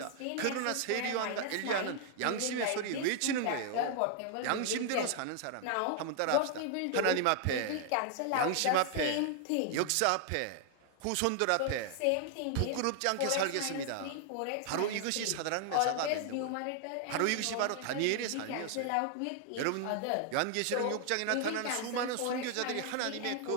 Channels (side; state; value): both; different; correlation 0.00